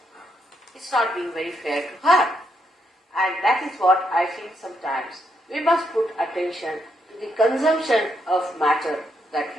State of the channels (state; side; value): normal; both; correlation 0.78